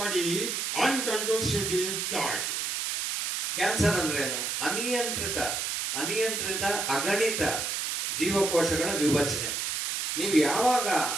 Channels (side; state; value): right; noise; hiss, 1 dB below the sound